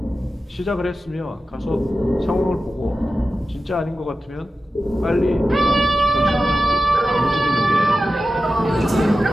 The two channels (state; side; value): normal; both; correlation 0.93